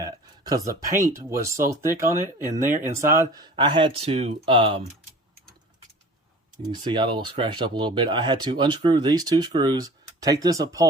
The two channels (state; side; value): normal; both; correlation 0.43